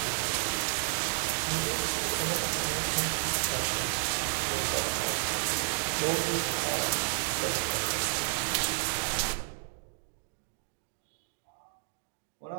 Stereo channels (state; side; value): silent; left; digital silence